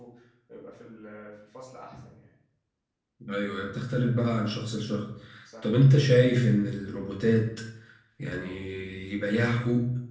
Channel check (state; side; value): identical; both; correlation 1.00